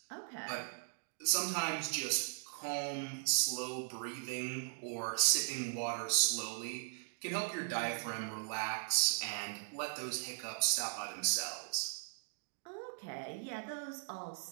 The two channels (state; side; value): silent; left; digital silence